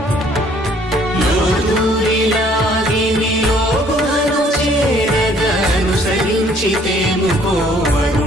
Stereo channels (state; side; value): normal; both; correlation 0.60